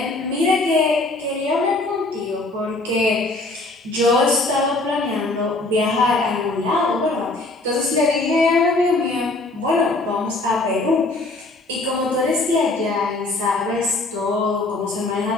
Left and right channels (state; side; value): quieter; right; 3.0 dB